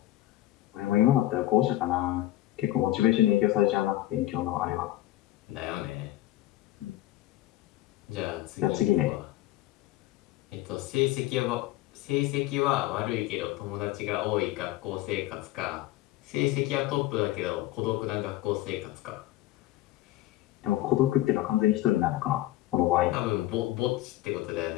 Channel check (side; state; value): right; quieter; 15.5 dB